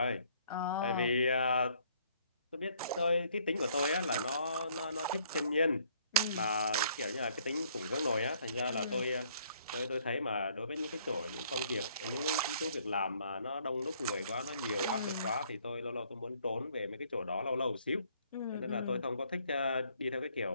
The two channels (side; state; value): both; inverted; correlation -0.63